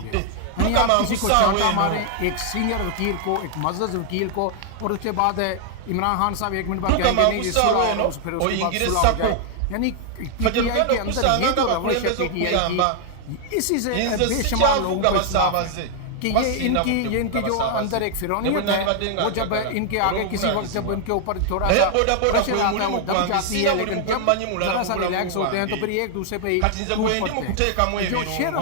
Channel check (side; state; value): both; different; correlation 0.00